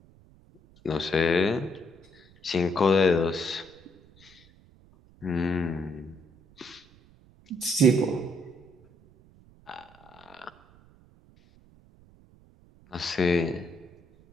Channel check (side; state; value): right; noise; rumble, 27 dB below the sound